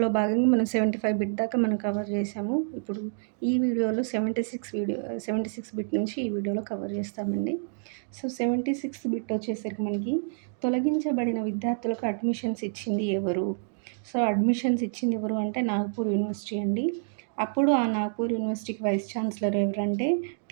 భాగంగా మనం 75 బిట్ దాకా మనం కవర్ చేసాము. ఇప్పుడు ఈ వీడియోలో 76 బిట్ నుంచి ఈ వీడియోలో కవర్ చేస్తామండి. సో 76 బిట్ వచ్చేసరికి మనకి తొలగించబడిన విద్యార్థులకు అడ్మిషన్స్ ఇచ్చింది ఎవరు? సో అడ్మిషన్స్ ఇచ్చింది ఎవరు అంటే నాగ్పూర్ యూనివర్సిటీ అండి. అప్పుడు ఆ నాగ్పూర్ యూనివర్సిటీకి వైస్ ఛాన్సలర్ ఎవరంటే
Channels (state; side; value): silent; left; digital silence